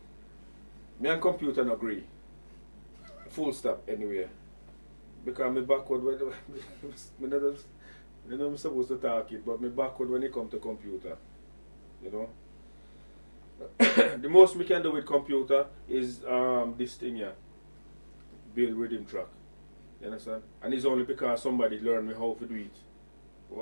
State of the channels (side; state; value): both; inverted; correlation -1.00